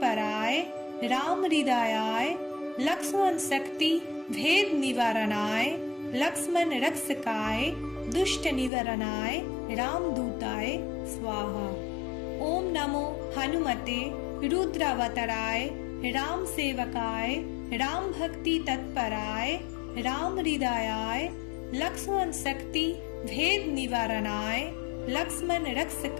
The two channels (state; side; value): drops out; right; at 8.7 s